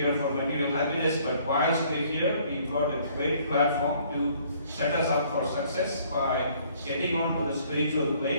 for material happiness, but whilst we're here, we've got a great platform to set us up for success by getting onto the spiritual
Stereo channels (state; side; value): inverted; both; correlation -0.61